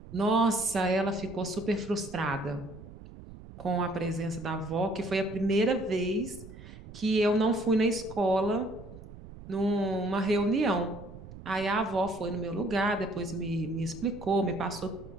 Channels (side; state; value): right; noise; rumble, 16 dB below the sound